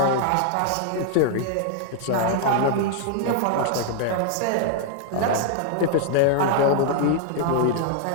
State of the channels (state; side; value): different; both; correlation -0.01